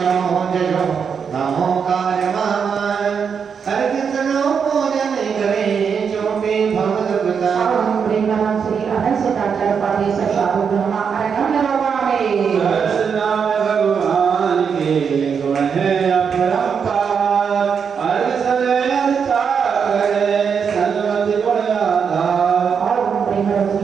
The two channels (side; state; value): left; quieter; 6.6 dB